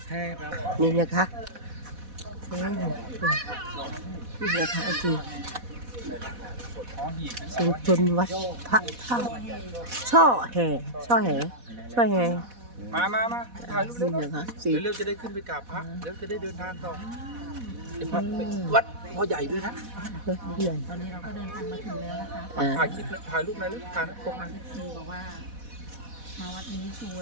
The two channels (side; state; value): left; late; 4.1 ms